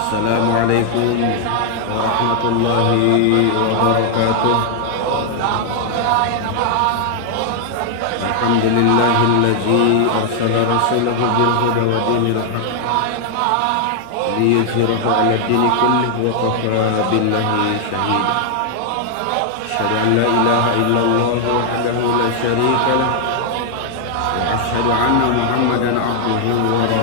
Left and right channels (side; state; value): both; different; correlation 0.00